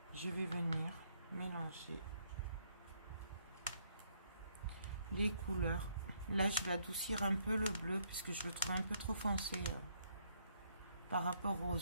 Je vais venir mélanger les couleurs. Là, je vais adoucir un peu le bleu puisque je le trouve un peu trop foncé par rapport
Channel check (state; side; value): inverted; both; correlation -0.71